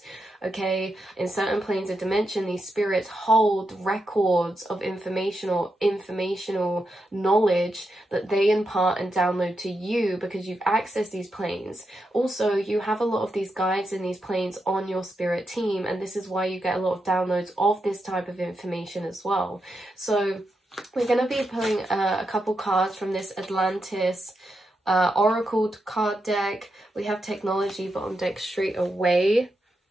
okay? In certain planes of dimension, these spirits hold records of informational knowledge that they impart and download to you because you've accessed these planes. Also, you have a lot of these guides in these planes on your spirit team, and this is why you get a lot of downloads of this type of information as well. So we're going to be pulling a couple cards from this Atlantis Oracle card deck. We have technology bottom deck straight away,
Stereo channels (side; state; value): both; normal; correlation 0.85